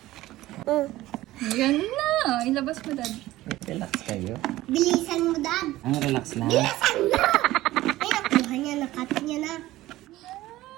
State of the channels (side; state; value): left; quieter; 16.5 dB